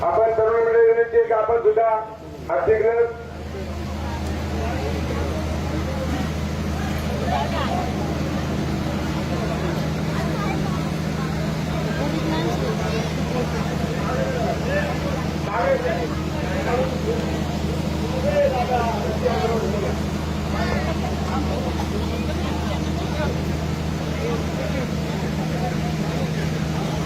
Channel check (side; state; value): both; identical; correlation 1.00